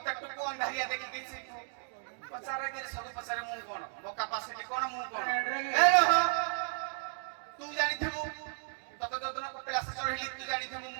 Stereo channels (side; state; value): left; silent; 55 dB below the other